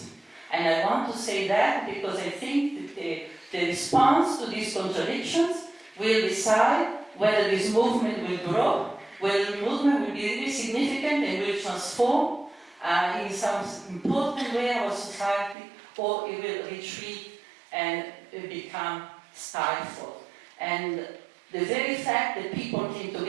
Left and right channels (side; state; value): left; drops out; at 15.6 s